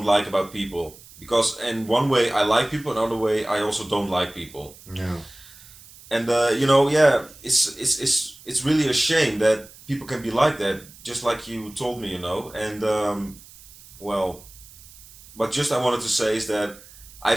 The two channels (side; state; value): right; noise; hiss, 21 dB below the sound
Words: like about people. Because in one way I like people, another way I also don't like people. Yeah. And it's really a shame that people can be like that, just like you told me, And well, but just I wanted to say is that I